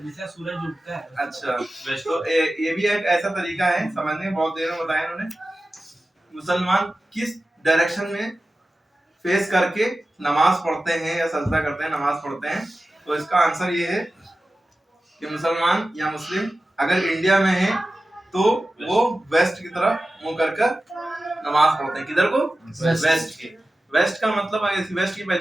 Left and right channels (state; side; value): normal; both; correlation 0.95